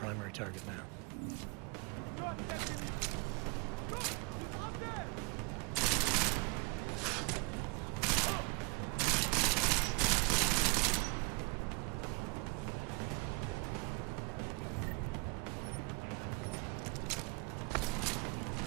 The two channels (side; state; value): left; quieter; 30.3 dB